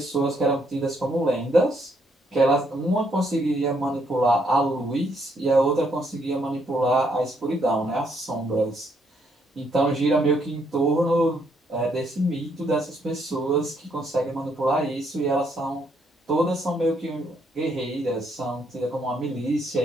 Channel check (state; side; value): normal; both; correlation 0.72